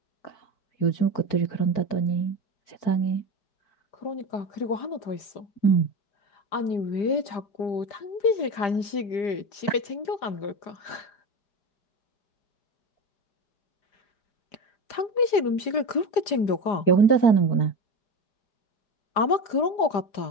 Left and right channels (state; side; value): late; right; 4.9 ms